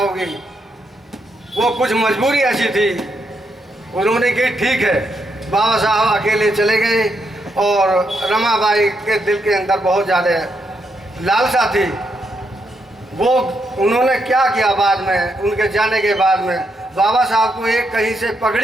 वो कुछ मजबूरी ऐसी थी, उन्होंने की ठीक है। बाबा साहब अकेले चले गए और रमाबाई के दिल के अंदर बहुत ज़्यादा लालसा थी। वो उन्होंने क्या किया, बाद में उनके जाने के बाद में बाबा साहब को एक कहीं से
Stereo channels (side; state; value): both; normal; correlation 0.80